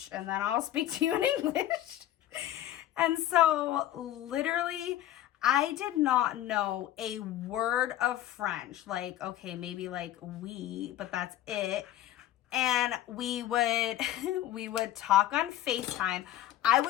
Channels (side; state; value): right; quieter; 13.1 dB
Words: and then I'll speak to you in English. And so literally, I did not know a word of French. Like, okay, maybe like oui, but that's it. And we would talk on FaceTime. I